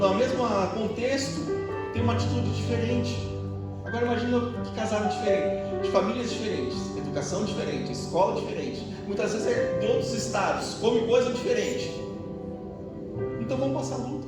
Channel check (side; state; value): both; identical; correlation 1.00